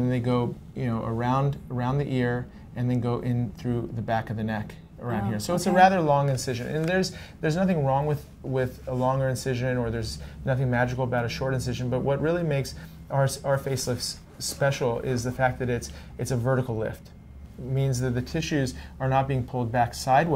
they go around the ear, and then go in through the back of the neck around here. So it's a rather long incision, and there's nothing wrong with a longer incision, or there's nothing magical about a short incision. But what really makes our facelifts special is the fact that it's a vertical lift. It means that the tissues are not being pulled back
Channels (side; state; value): both; identical; correlation 1.00